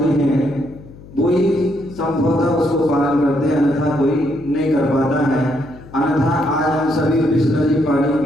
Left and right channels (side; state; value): left; noise; hum, 19 dB below the sound